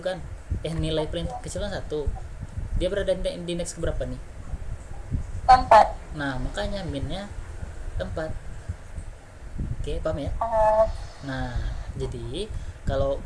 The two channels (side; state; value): both; identical; correlation 1.00